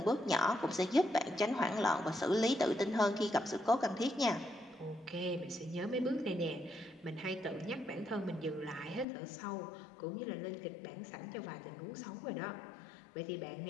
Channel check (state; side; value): drops out; right; at 9.1 s